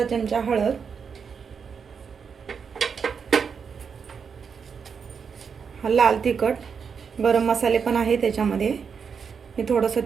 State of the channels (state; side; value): quieter; left; 6.3 dB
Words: चमचा हळद, लाल तिखट, गरम मसाले पण आहे त्याच्यामध्ये. मी थोडंसं